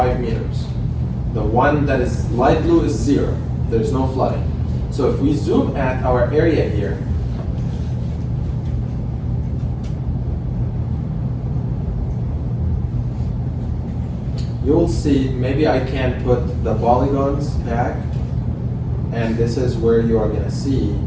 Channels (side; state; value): both; identical; correlation 1.00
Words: meters. The one that is light blue is 0. There's no flooding. So if we zoom at our area here, you'll see, maybe I can put the polygons back, and this is where you are gonna see,